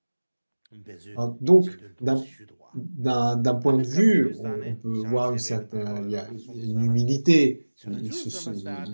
Alors, donc, d'un point de vue, on peut voir il y a une humilité,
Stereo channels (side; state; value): both; inverted; correlation -1.00